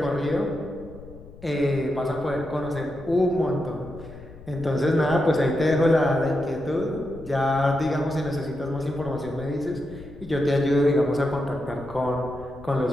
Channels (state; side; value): noise; left; rumble, 18 dB below the sound